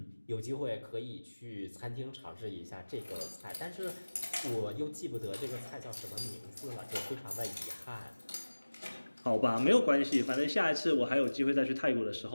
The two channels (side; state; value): both; inverted; correlation -1.00